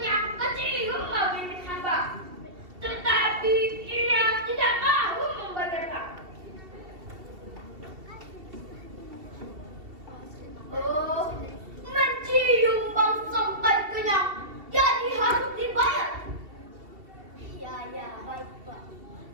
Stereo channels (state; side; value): late; left; 2.7 ms